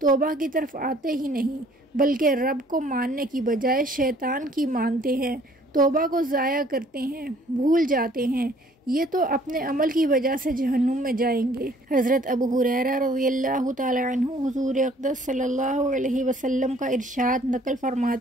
توبہ کی طرف آتے ہی نہیں، بلکہ رب کو ماننے کی بجائے شیطان کی مانتے ہیں، توبہ کو ضائع کرتے ہیں، بھول جاتے ہیں، یہ تو اپنے عمل کی وجہ سے جہنم میں جائیں گے۔ حضرت ابو ہریرہ رضی اللہ تعالی عنہ حضور اقدس صلی اللہ علیہ وسلم کا ارشاد نقل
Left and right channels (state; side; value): normal; both; correlation 0.58